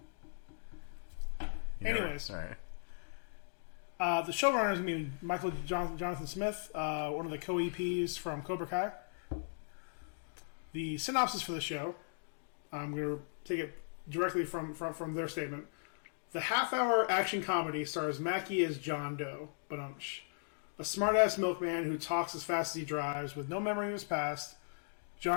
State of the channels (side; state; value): right; silent; digital silence